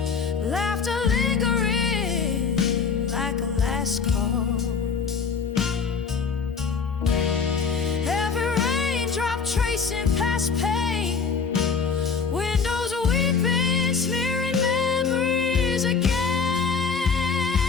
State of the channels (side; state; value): right; quieter; 5.5 dB